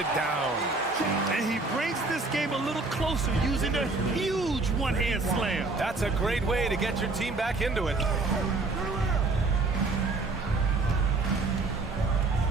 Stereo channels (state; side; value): quieter; left; 3.5 dB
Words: down. And he brings this game a little closer using a huge one-hand slam. That's a great way to get your team back into it.